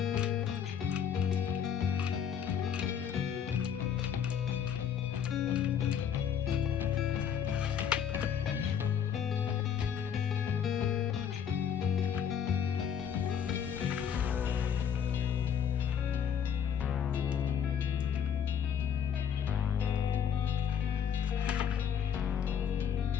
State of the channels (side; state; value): right; quieter; 8.1 dB